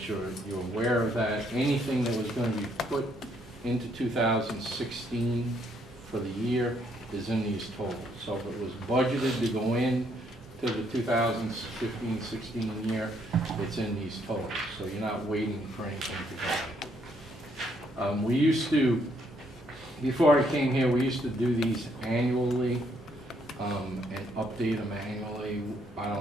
you're aware of that. Anything that was going to be put into 2016 for the year is in these totals. So if it was budgeted to go in to the 2015-16 year, it's in these totals. So you're not waiting for anything to go in. We used to, before I came here, we used to do these annually. and update them annually. I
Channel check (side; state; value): both; normal; correlation 0.71